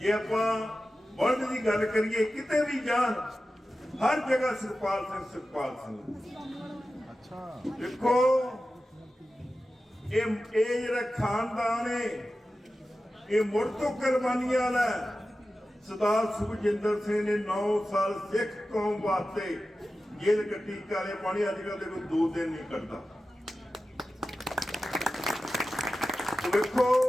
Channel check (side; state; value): both; normal; correlation 0.94